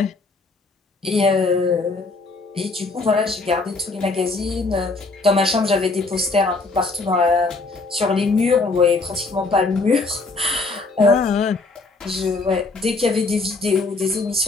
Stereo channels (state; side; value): quieter; right; 3.6 dB